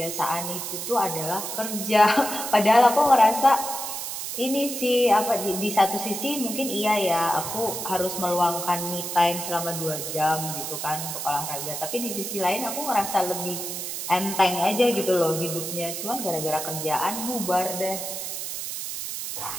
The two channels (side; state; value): right; noise; hiss, 5 dB below the sound